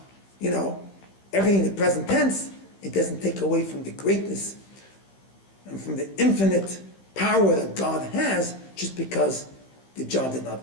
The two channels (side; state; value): right; late; 15 ms